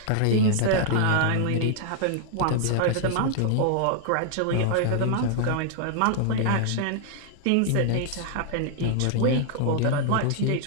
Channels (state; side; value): different; both; correlation 0.00